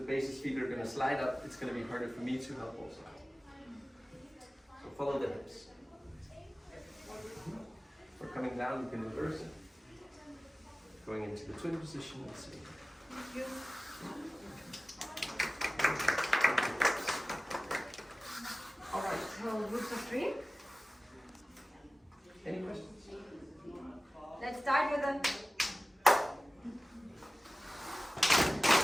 feet are going to slide up. It's going to be harder for me to help also. So follow the hips. We're coming down, you can reverse it. Going into the twin position and see. Thank you. Alright, so groups of 3. Any questions? Let's start with a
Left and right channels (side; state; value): both; normal; correlation 0.97